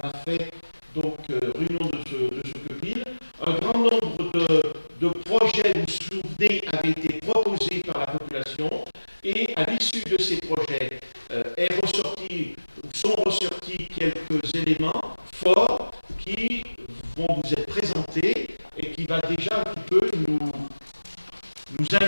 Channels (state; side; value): inverted; both; correlation -1.00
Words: fait donc réunion de ce copil. Un grand nombre de projets, vous vous souvenez, avaient été proposés par la population et à l'issue de ces projets sont ressortis quelques éléments forts qui vont vous être présentés et qui va déjà un petit peu nous